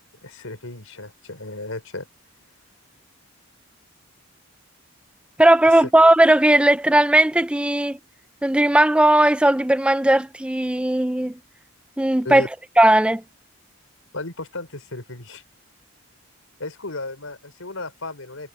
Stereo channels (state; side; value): normal; both; correlation 0.90